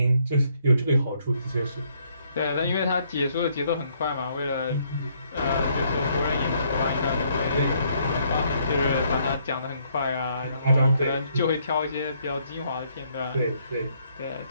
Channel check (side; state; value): both; inverted; correlation -0.69